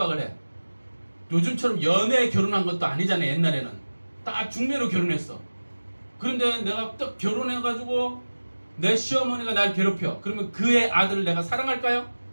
해. 요즘처럼 연애 결혼한 것도 아니잖아요. 옛날에는 딱 중매로 결혼했어. 그런데 내가 딱 결혼해가지고 내 시어머니가 날 괴롭혀. 그러면 그의 아들을 내가 사랑할까요?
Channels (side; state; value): both; inverted; correlation -1.00